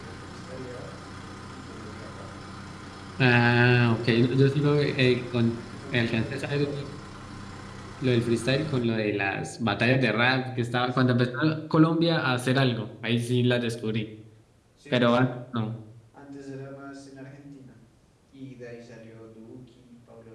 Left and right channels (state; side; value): identical; both; correlation 1.00